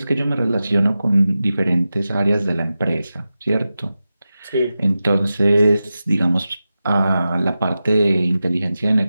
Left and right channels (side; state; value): both; inverted; correlation -0.93